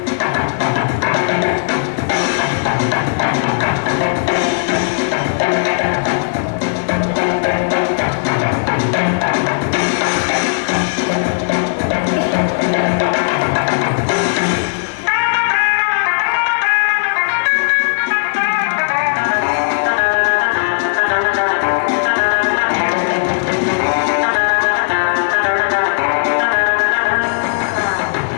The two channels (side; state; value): right; silent; digital silence